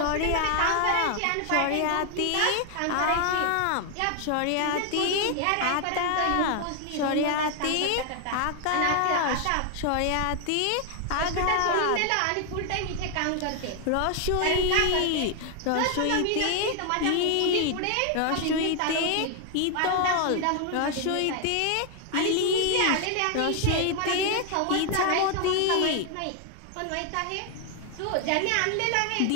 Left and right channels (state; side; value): different; both; correlation 0.00